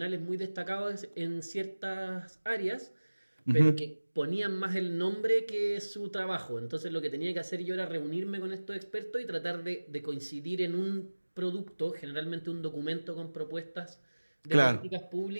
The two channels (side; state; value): both; inverted; correlation -1.00